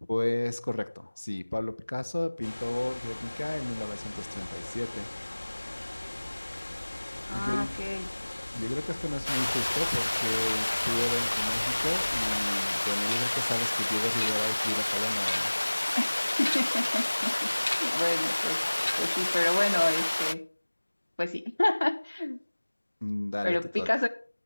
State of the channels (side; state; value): both; inverted; correlation -1.00